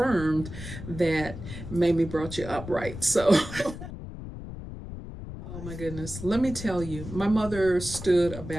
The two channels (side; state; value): left; noise; rumble, 10 dB below the sound